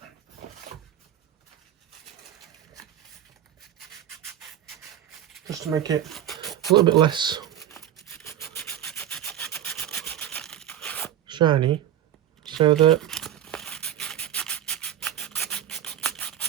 Just to make it a little bit less shiny, so that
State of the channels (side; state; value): left; quieter; 11.0 dB